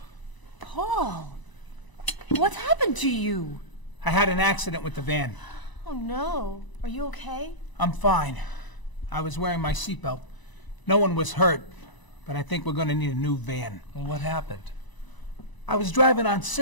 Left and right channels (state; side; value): late; right; 1.0 ms